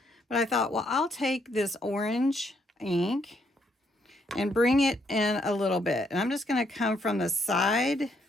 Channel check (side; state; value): both; normal; correlation 0.73